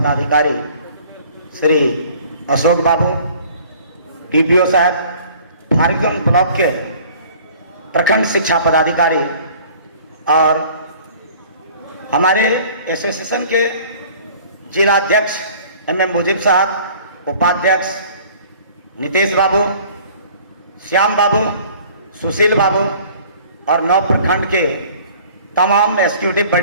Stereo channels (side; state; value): both; inverted; correlation -0.51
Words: श्री अशोक बाबू, डीपीओ साहब, फारबिसगंज ब्लॉक के प्रखंड शिक्षा पदाधिकारी और हमारे एसोसिएशन के जिला अध्यक्ष MM मुजीब साहब, उपाध्यक्ष नितेश बाबू, श्याम बाबू, सुशील बाबू और 9 प्रखंड के तमाम एग्जीक्यूटिव